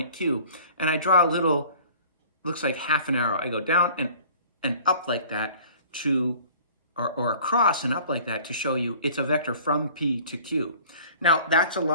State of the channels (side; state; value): both; inverted; correlation -0.49